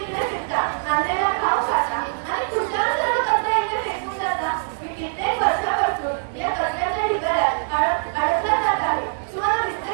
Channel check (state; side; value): silent; left; digital silence